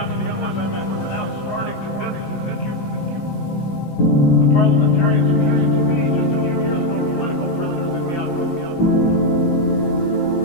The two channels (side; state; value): right; late; 17 ms